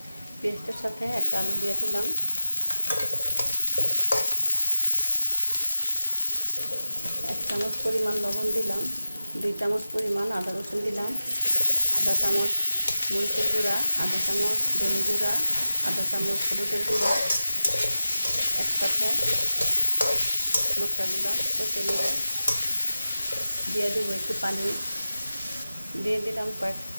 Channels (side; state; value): both; inverted; correlation -0.95